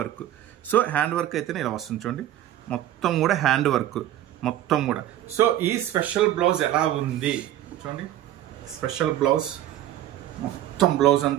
So hand work అయితేనే ఇలా వస్తుంది చూడండి. మొత్తం కూడా హ్యాండ్ వర్క్ మొత్తం కూడా. సో ఈ స్పెషల్ బ్లౌజ్ ఎలా ఉంది చూడండి. స్పెషల్ బ్లౌజ్, మొత్తం బ్లౌజ్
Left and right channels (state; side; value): quieter; left; 12.8 dB